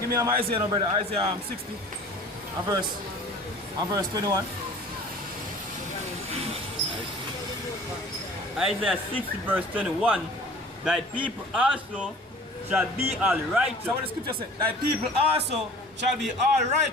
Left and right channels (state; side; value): normal; both; correlation 0.46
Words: me Isaiah, no brother, Isaiah 60, and verse 21. Isaiah 60 verse 21. Thy people also shall be all righteous. So what the scripture says, thy people also shall be all